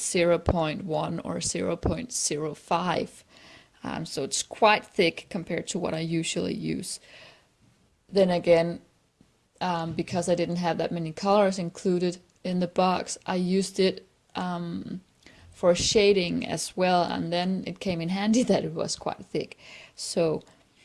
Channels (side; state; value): both; identical; correlation 1.00